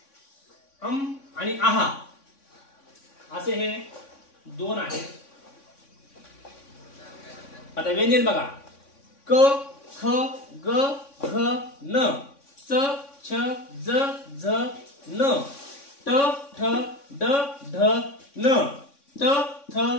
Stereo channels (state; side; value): late; right; 3.6 ms